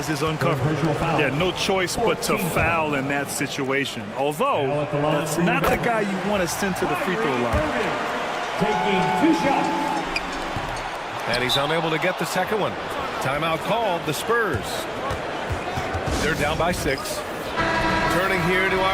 is uncovered. Yeah, no choice but to foul in that situation. Although, that's not the guy you want to send to the free throw line. Taking 2 shots. And he's unable to get the second one. Timeout called, the Spurs. They're down by 6. Turning here to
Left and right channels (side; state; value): both; identical; correlation 1.00